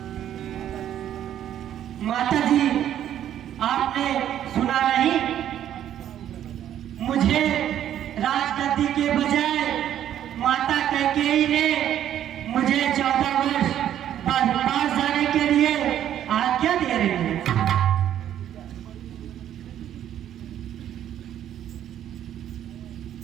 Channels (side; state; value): left; quieter; 10.8 dB